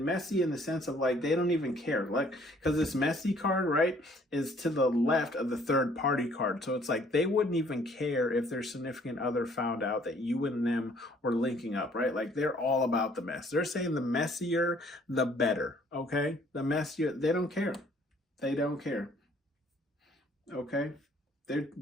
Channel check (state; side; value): normal; both; correlation 0.60